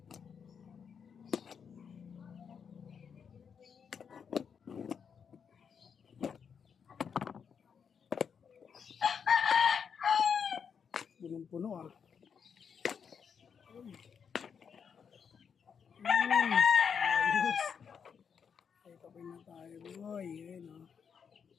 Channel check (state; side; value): quieter; right; 6.8 dB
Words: Punong-puno ah. Ayos. Ay, tapin na tayo boy. Ayan o.